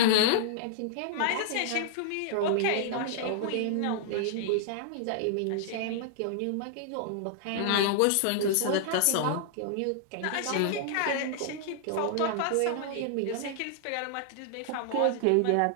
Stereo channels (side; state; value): both; different; correlation -0.01